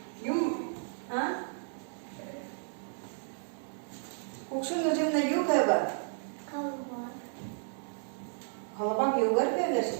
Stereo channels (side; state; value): left; silent; 56 dB below the other